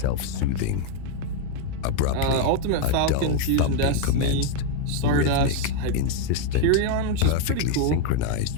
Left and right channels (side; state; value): both; different; correlation 0.01